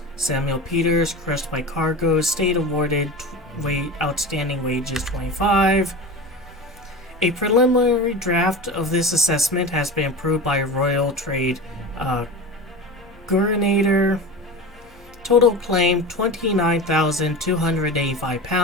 Samuel Peters, Crushed by Cargo, Estate Awarded Outstanding Wages $25. A preliminary draft of this assessment has been approved by Royal Trade Gurinator. Total claim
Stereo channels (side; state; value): left; noise; hum, 28 dB below the sound